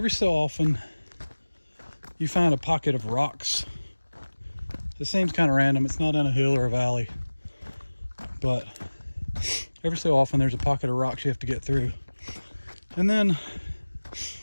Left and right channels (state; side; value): inverted; both; correlation -1.00